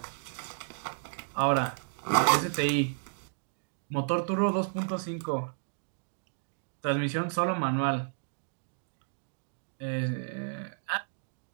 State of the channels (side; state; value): left; silent; digital silence